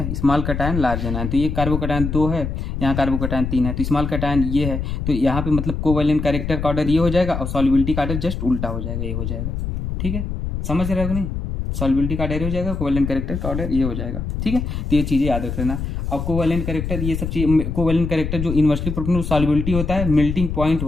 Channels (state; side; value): noise; left; rumble, 4 dB below the sound